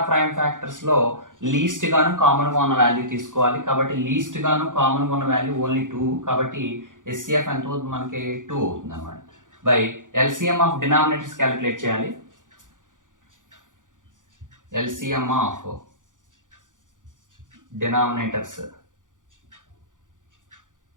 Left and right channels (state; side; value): late; left; 0.88 ms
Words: ప్రైమ్ ఫ్యాక్టర్స్లో లీస్ట్ గాను కామన్గా ఉన్న వాల్యూ తీసుకోవాలి. కాబట్టి లీస్ట్ గాను కామన్గా ఉన్న వాల్యూ ఓన్లీ 2. కాబట్టి హెచ్సిఎఫ్ ఎంత అవుతుంది, మనకి 2 అవుతుంది అనమాట. By LCM of denominators calculate చేయాలి. ఎల్సిఎం ఆఫ్ డినామినేటర్స్